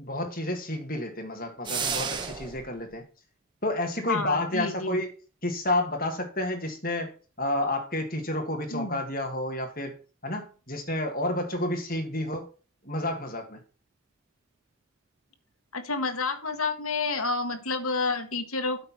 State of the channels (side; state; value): both; normal; correlation -0.06